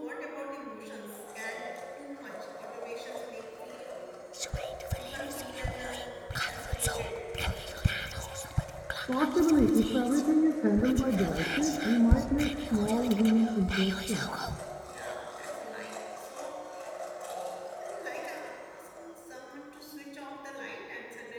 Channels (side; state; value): both; identical; correlation 1.00